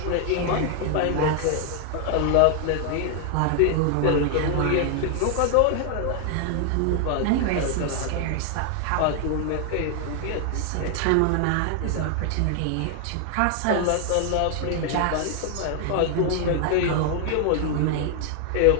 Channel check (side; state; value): both; different; correlation 0.00